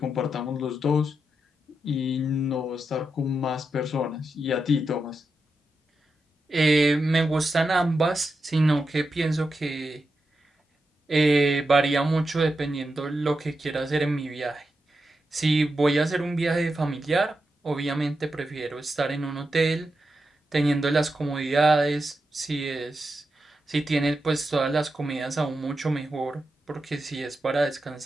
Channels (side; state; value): both; normal; correlation 0.88